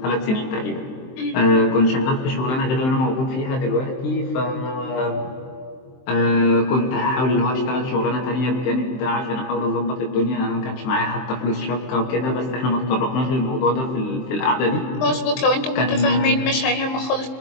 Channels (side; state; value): right; late; 23 ms